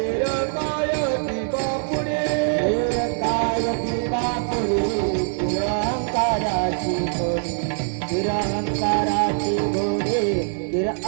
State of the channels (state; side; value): silent; left; digital silence